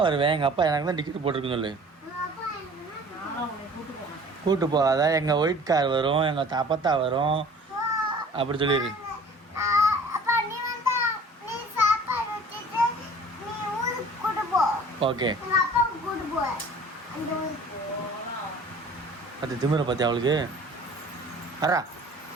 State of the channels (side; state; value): both; normal; correlation 0.48